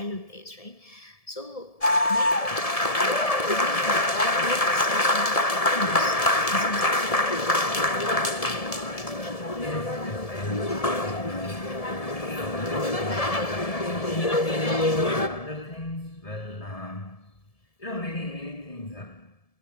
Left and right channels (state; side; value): late; right; 1.7 ms